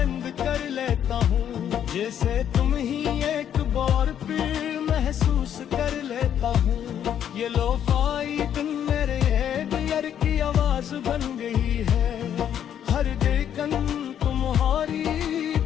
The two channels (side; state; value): right; quieter; 9.6 dB